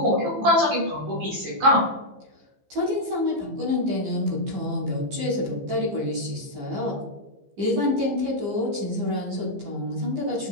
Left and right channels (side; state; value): left; late; 15 ms